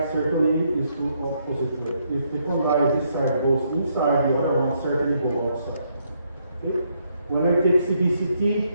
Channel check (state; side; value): inverted; both; correlation -0.74